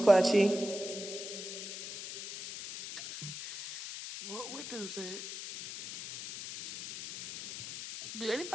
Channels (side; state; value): left; noise; hiss, 8 dB below the sound